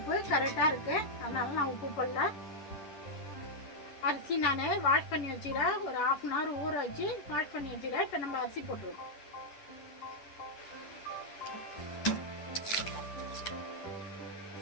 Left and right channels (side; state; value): right; late; 10 ms